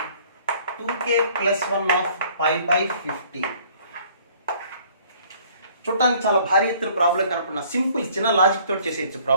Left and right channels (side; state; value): both; inverted; correlation -0.57